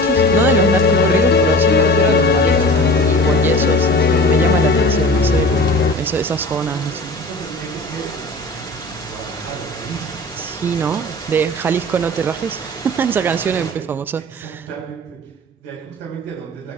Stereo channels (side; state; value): both; normal; correlation 0.38